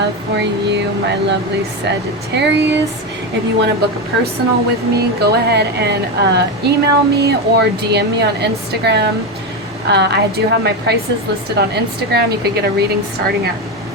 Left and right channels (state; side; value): normal; both; correlation 0.14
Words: for you, my lovely Sagittarius. If you want to book a personal with me, go ahead and email me or DM me on Instagram. I do have my prices listed on Instagram. You could get a reading starting at